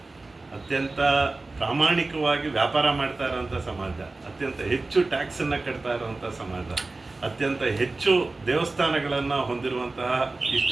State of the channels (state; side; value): quieter; left; 3.3 dB